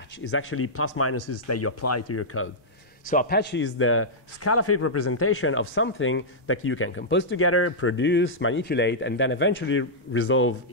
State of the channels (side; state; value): both; normal; correlation -0.09